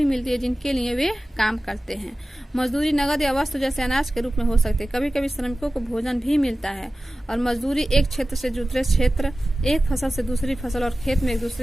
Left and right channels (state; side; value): normal; both; correlation 0.96